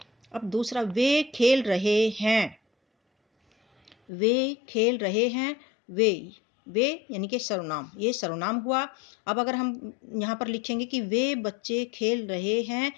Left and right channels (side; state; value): right; drops out; at 4.0 s